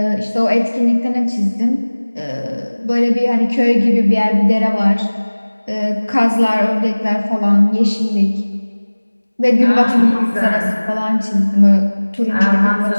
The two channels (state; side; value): inverted; both; correlation -1.00